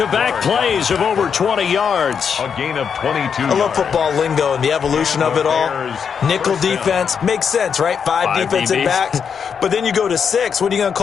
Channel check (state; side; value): quieter; right; 6.8 dB